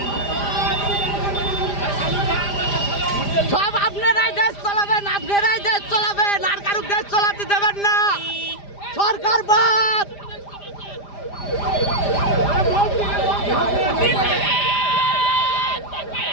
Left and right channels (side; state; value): right; late; 5.0 ms